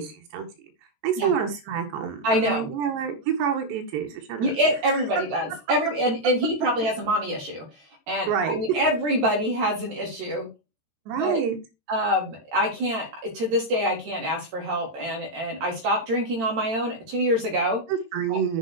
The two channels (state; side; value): late; left; 13 ms